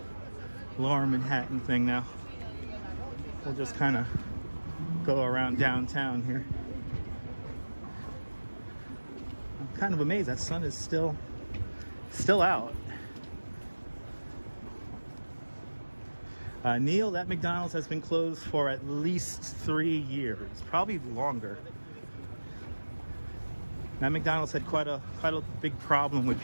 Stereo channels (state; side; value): inverted; both; correlation -1.00